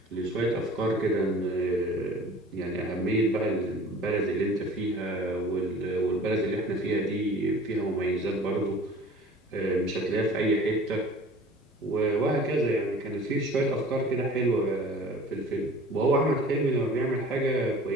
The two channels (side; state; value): both; normal; correlation 0.45